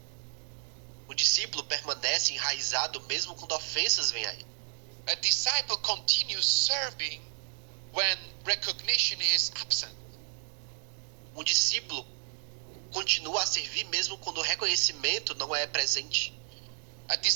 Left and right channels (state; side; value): silent; left; 57 dB below the other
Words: O discípulo permanece enraizado mesmo quando ofensas vêm a ele. A disciple continues serving when recognition is absent. Um discípulo continua a servir mesmo quando o reconhecimento não é presente. A